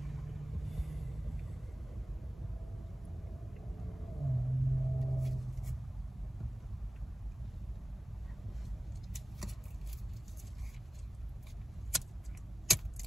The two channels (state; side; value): normal; both; correlation 0.95